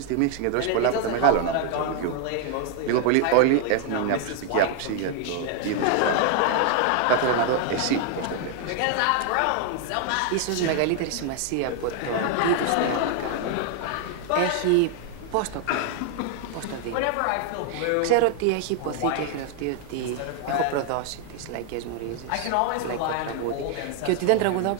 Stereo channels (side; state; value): both; different; correlation 0.00